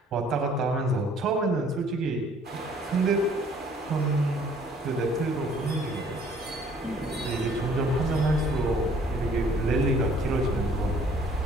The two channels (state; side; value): normal; both; correlation 0.58